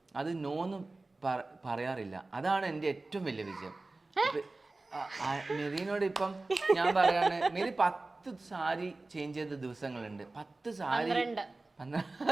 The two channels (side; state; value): left; quieter; 3.2 dB